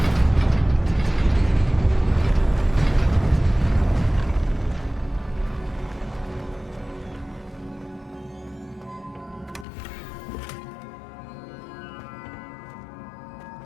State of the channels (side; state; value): right; drops out; at 9.7 s